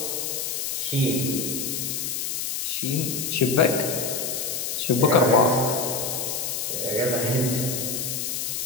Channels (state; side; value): noise; left; hiss, 2 dB below the sound